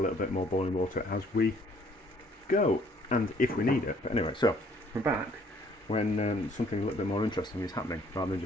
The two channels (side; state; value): both; normal; correlation 0.61